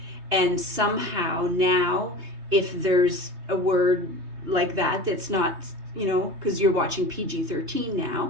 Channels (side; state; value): left; late; 3.2 ms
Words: And somehow now, if there's a word like that that's not, because you're watching PG-13